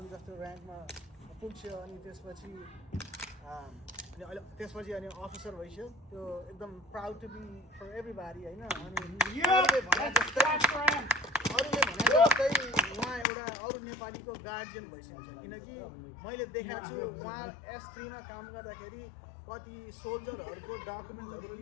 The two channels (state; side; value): drops out; right; at 13.2 s